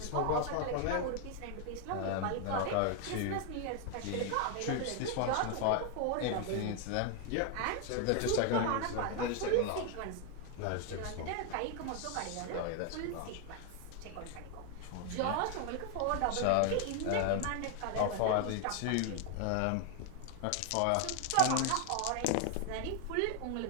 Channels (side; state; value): both; different; correlation 0.01